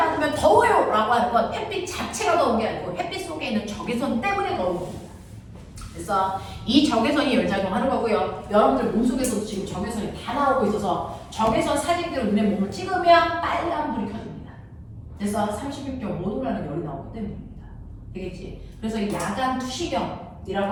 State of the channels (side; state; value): both; identical; correlation 1.00